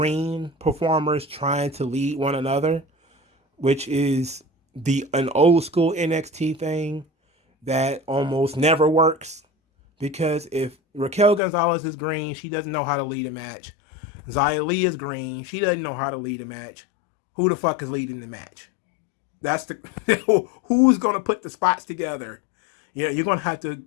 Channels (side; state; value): right; drops out; at 11.4 s